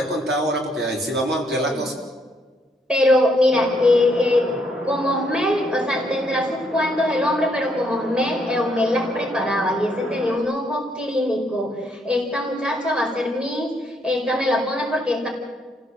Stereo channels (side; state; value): both; normal; correlation 0.72